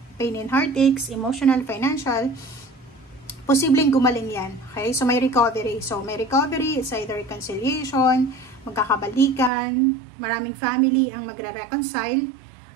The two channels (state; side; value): drops out; left; at 9.5 s